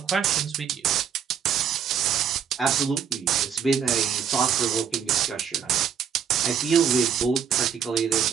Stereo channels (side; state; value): left; quieter; 7.8 dB